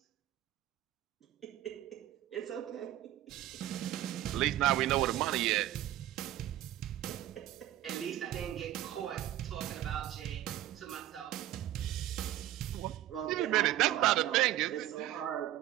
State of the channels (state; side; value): quieter; left; 13.2 dB